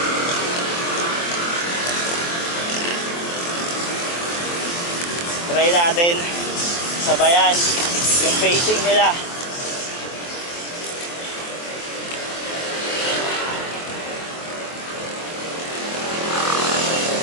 Try natin sabayan yung pacing nila.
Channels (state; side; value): late; right; 23 ms